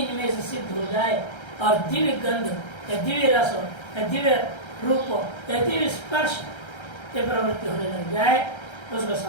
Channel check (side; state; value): right; late; 1.3 ms